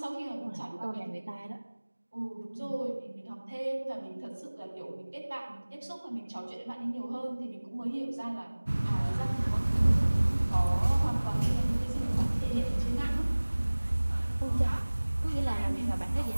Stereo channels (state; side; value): inverted; both; correlation -1.00